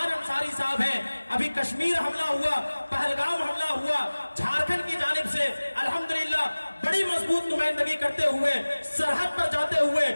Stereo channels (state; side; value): inverted; both; correlation -1.00